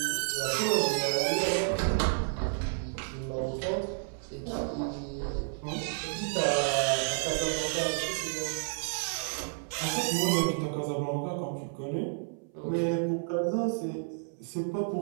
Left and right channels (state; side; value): silent; left; 57 dB below the other